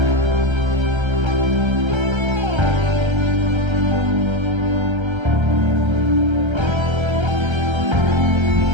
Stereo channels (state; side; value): late; left; 1.3 ms